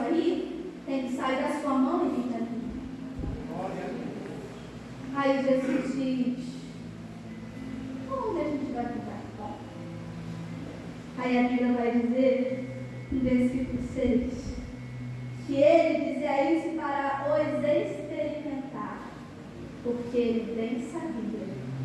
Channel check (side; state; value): both; identical; correlation 1.00